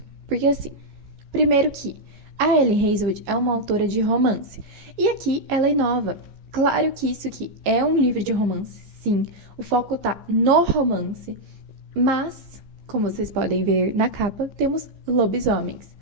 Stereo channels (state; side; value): late; left; 15 ms